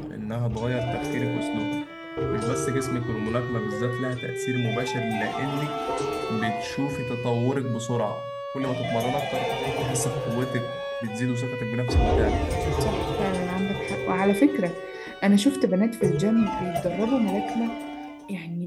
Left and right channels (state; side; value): identical; both; correlation 1.00